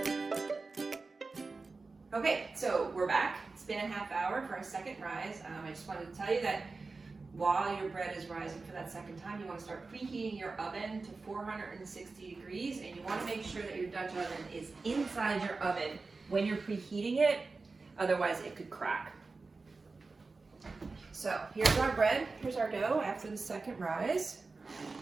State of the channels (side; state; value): left; quieter; 3.9 dB